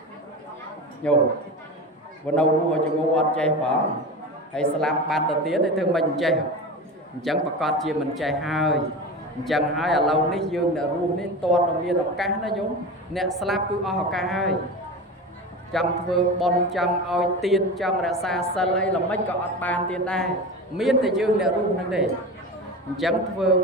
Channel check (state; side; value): normal; both; correlation 0.28